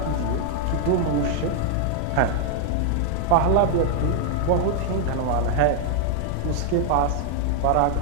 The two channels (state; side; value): different; both; correlation 0.00